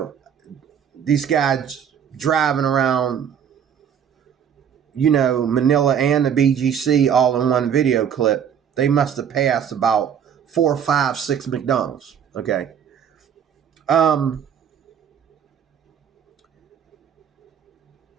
guys driving around, Manila and the BGC all in one video clip. They must have passed about 4, 5, 6 McDonald's. Okay.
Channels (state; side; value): quieter; left; 8.3 dB